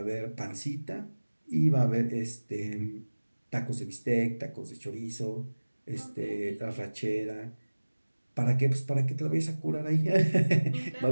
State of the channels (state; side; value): inverted; both; correlation -1.00